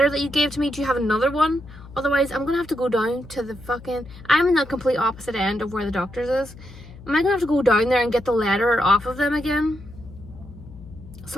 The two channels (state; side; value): noise; left; hum, 18 dB below the sound